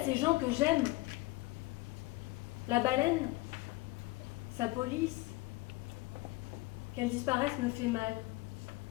gens que j'aime. La baleine, sa police, qu'elle disparaisse me fait mal,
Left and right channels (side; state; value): right; quieter; 20.8 dB